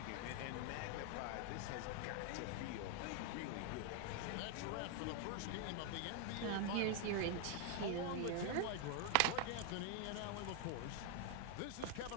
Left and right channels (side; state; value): both; different; correlation 0.01